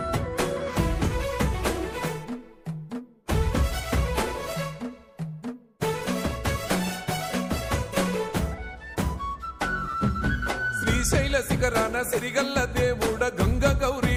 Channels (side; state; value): both; identical; correlation 1.00